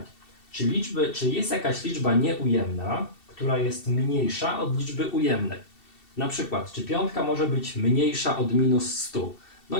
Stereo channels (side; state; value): right; late; 2.7 ms